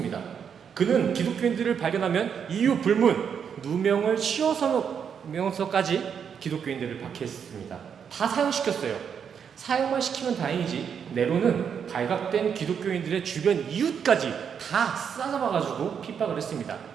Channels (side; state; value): left; quieter; 7.4 dB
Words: 그는 기독교인들을 발견하면 이유 불문 누명을 씌워서면서까지 기독교인들을 박해했습니다. 다 사형시켰어요. 사형만 시키면 다행이지 네로는 발각된 기독교인들의 주변 이웃까지 다 싸잡아가지고 핍박을 했습니다.